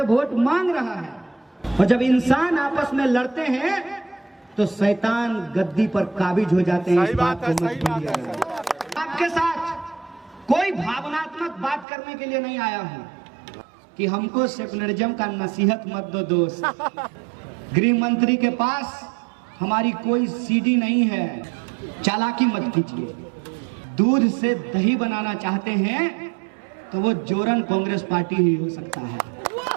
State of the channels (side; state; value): left; drops out; at 11.9 s